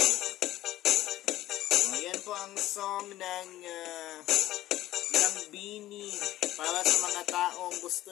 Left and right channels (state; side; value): quieter; right; 14.8 dB